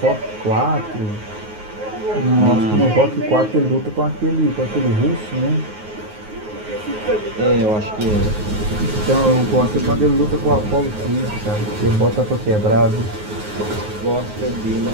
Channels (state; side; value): late; left; 9.4 ms